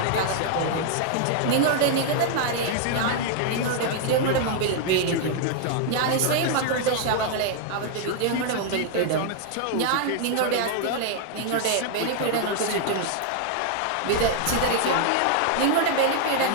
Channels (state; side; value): different; both; correlation 0.00